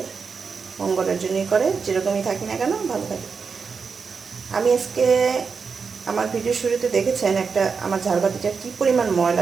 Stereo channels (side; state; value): left; quieter; 5.4 dB